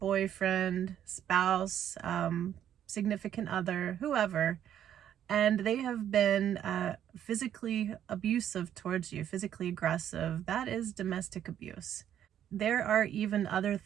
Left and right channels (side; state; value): left; quieter; 10.3 dB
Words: spouse, significant other, whoever, and they have been physically abusive towards you, physically aggressive, that is domestic abuse. There are even other